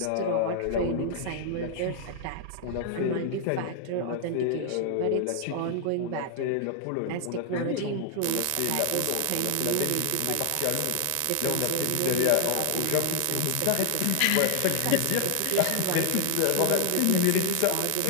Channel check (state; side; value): different; both; correlation 0.00